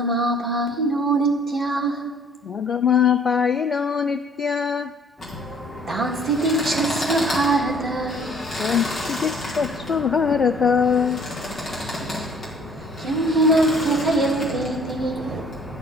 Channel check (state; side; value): normal; both; correlation 0.56